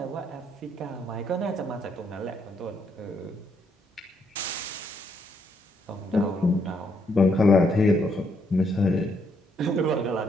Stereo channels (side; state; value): both; normal; correlation 0.74